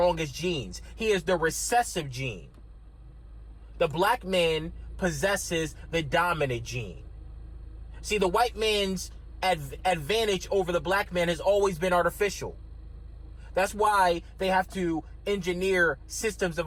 genes. He is the recessive gene. The black man possesses the dominant gene. See, the white man's advantage over the black man has always been artificial. That's why they have to engineer systems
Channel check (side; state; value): both; identical; correlation 1.00